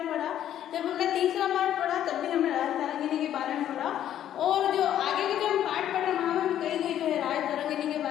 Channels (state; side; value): quieter; right; 11.1 dB